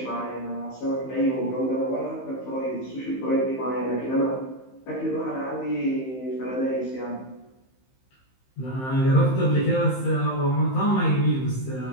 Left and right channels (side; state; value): right; late; 15 ms